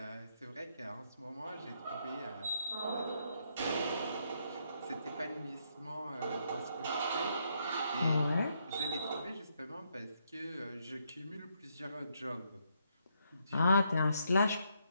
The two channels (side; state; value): both; inverted; correlation -0.76